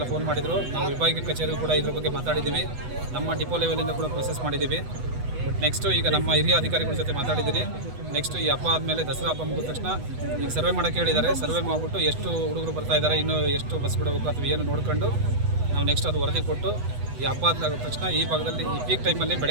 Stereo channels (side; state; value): left; late; 8.1 ms